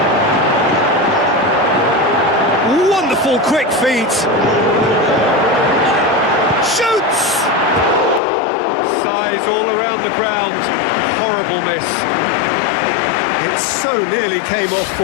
Wonderful quick feet. Shoots! Size all around the ground. Horrible miss. It so nearly came off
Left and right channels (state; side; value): drops out; right; at 8.2 s